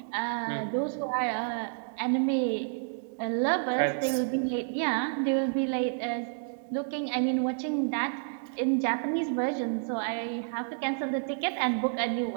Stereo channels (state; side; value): silent; left; digital silence